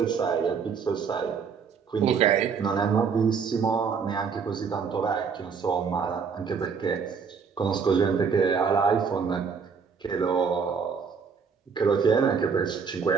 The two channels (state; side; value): quieter; left; 6.0 dB